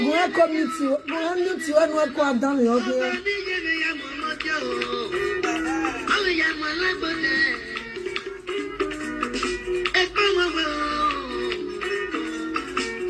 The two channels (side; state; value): both; identical; correlation 1.00